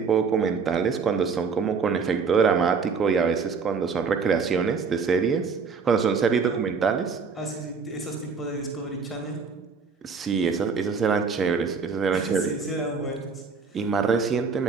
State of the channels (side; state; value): left; quieter; 5.3 dB